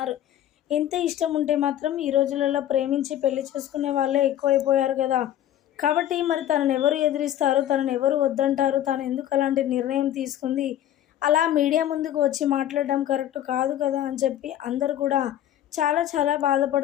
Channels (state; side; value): quieter; right; 11.8 dB